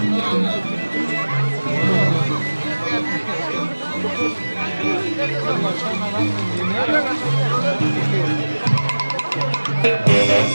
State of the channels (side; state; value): both; inverted; correlation -1.00